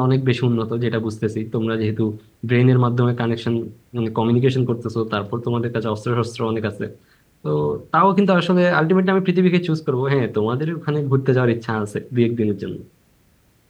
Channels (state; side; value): identical; both; correlation 1.00